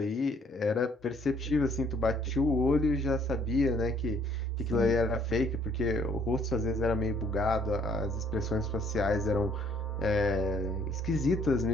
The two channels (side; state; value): both; normal; correlation 0.63